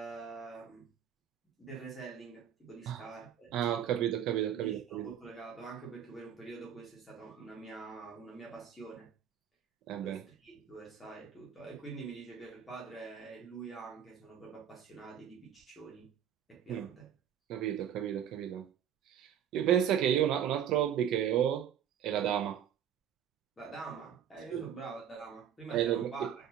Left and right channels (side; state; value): left; quieter; 9.4 dB